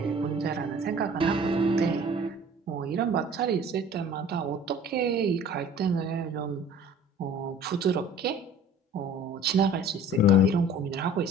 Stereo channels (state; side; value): normal; both; correlation 0.47